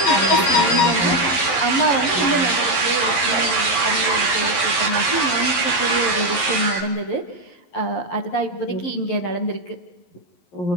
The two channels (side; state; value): right; late; 11 ms